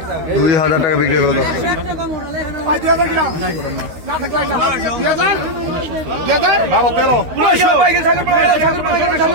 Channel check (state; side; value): late; left; 13 ms